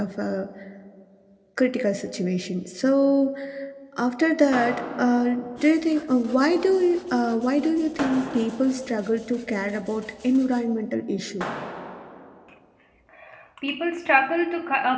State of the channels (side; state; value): both; identical; correlation 1.00